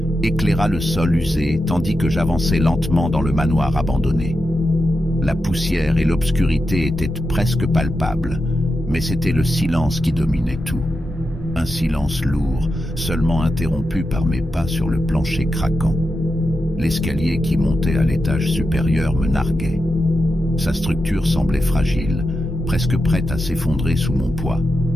éclaira le sol usé tandis que j'avançais lentement dans le manoir abandonné. La poussière et l'obscurité étaient presque palpables, mais c'était le silence qui dominait tout. Un silence lourd, seulement interrompu par mes pas sur le plancher craquant. L'escalier qui montait à l'étage supérieur me narguait. Sa structure semblait fragile, presque prête à s'effondrer sous mon poids.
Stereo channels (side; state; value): both; normal; correlation 0.89